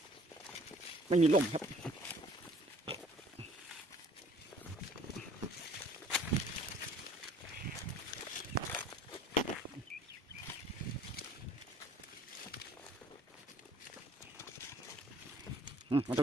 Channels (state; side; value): normal; both; correlation 0.56